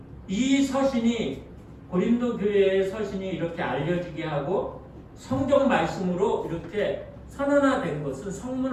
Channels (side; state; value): both; identical; correlation 1.00